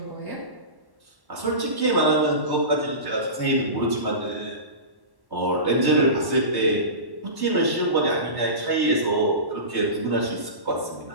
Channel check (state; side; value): late; left; 1.1 ms